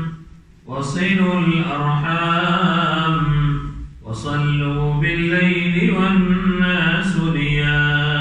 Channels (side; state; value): both; identical; correlation 1.00